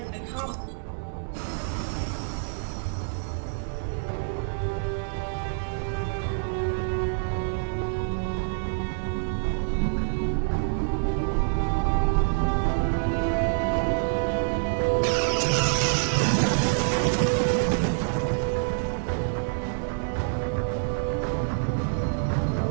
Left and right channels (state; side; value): silent; left; digital silence